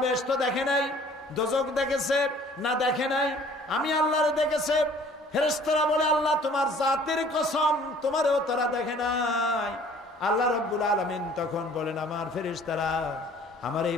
বেহেশত দেখে নাই। দোজখ দেখেছে না? দেখে নাই। আমি আল্লাহরে দেখেছে। ফেরেশতারা বলে, আল্লাহ তোমার জাতের কসম, তোমারও তারা দেখে নাই। আল্লাহ রাব্বুল আলামিন তখন বলেন, আমার ফেরেশতারা, আমার এই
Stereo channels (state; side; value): normal; both; correlation 0.53